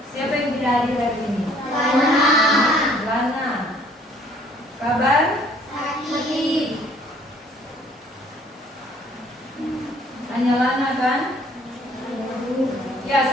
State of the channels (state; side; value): normal; both; correlation 0.59